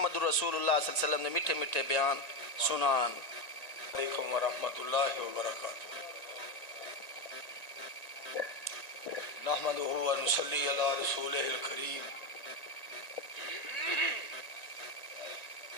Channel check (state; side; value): late; right; 1.9 ms